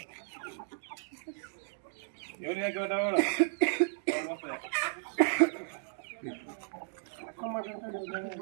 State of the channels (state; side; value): silent; left; digital silence